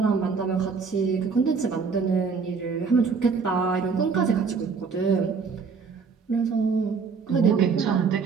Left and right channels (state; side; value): quieter; left; 5.3 dB